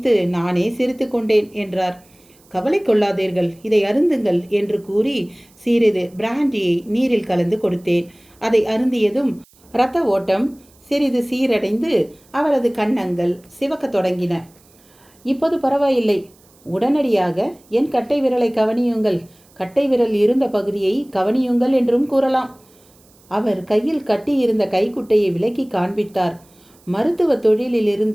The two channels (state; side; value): noise; right; hiss, 30 dB below the sound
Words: நானே சிரித்து கொண்டேன் என்றார். கவலை கொள்ளாதீர்கள், இதை அருந்துங்கள் என்று கூறி சிறிது பிராண்டியை நீரில் கலந்து கொடுத்தேன். அதை அருந்தியதும் இரத்த ஓட்டம் சிறிது சீரடைந்து அவரது கன்னங்கள் சிவக்கத் தொடங்கின. இப்போது பரவாயில்லை. உடனடியாக என் கட்டை விரலை கவனியுங்கள், கட்டை விரல் இருந்த பகுதியை கவனியுங்கள் என்றும் கூறலாம். அவர் கையில் கட்டியிருந்த கைக்குட்டையை விலக்கி காண்பித்தார். மருத்துவ